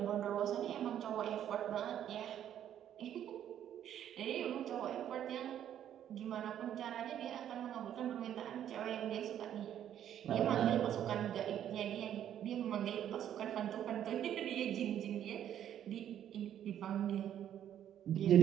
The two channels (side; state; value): left; quieter; 10.4 dB